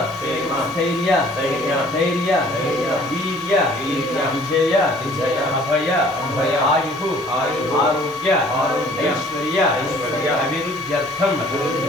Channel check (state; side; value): normal; both; correlation 0.54